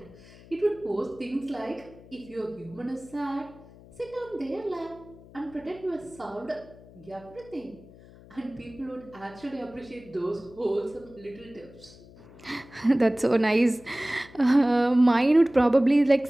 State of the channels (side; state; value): left; noise; hum, 22 dB below the sound